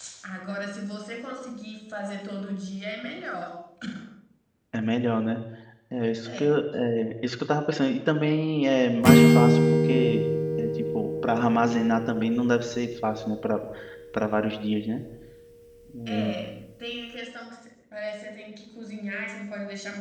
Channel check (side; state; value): both; identical; correlation 1.00